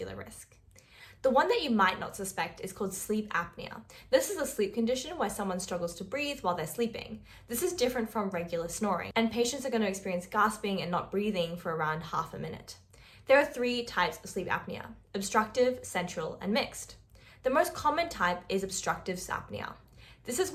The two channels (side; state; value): both; identical; correlation 1.00